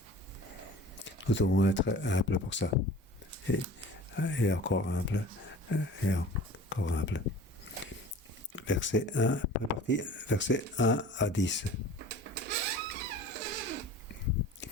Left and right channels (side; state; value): both; normal; correlation 0.42